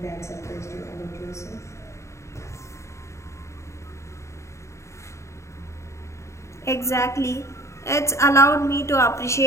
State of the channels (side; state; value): right; late; 0.14 ms